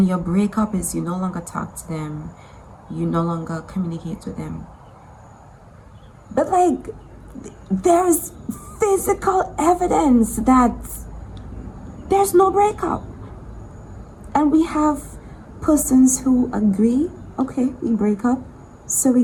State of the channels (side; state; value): both; identical; correlation 1.00